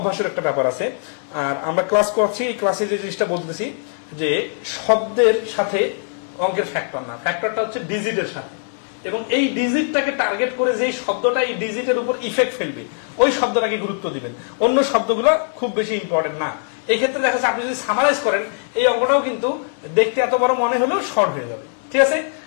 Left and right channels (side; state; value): right; silent; 65 dB below the other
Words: একটা ব্যাপার আছে। আর আমরা ক্লাস করছি, এই ক্লাসে যে জিনিসটা বলতেছি যে শব্দের সাথে অঙ্কের ফ্যাক্টর না, ফ্যাক্টরটা হচ্ছে ডিজিটের সাথে, এবং এই ডিজিটটাকে টার্গেট করে যেই শব্দটা এই ডিজিটের উপর ইফেক্ট ফেলবে ওই শব্দটাকে গুরুত্ব দিবেন, অন্য শব্দগুলো খুব বেশি ইম্পর্টেন্ট না। এই ক্ষেত্রে দেখা যাচ্ছে আপনি যদি সামারাইজ করেন এই অঙ্কটাও কিন্তু দেখতে এত বড় মনে হলেও শর্ট হয়ে যাবে, ঠিক আছে।